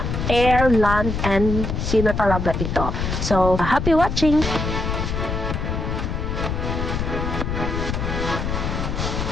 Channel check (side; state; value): left; noise; rumble, 2 dB below the sound